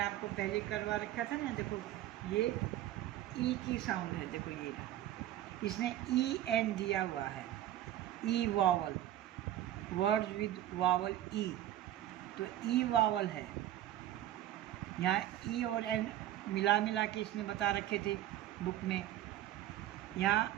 आपको पहले करवा रखा था ना, देखो ये ई की साउंड है, देखो ये इसने EN दिया हुआ है, ई वावल, वर्ड्स विद वावल ई, तो ई वावल है। यहाँ ई और एन मिला के इसने बता रखे थे बुक में। यहाँ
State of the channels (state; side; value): quieter; left; 12.9 dB